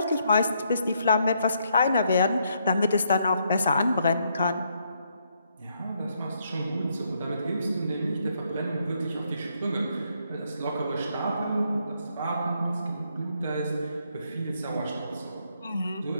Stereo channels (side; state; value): both; inverted; correlation -0.74